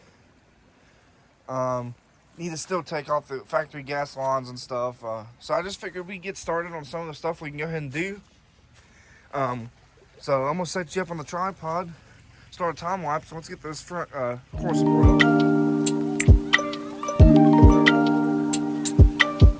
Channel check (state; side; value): identical; both; correlation 1.00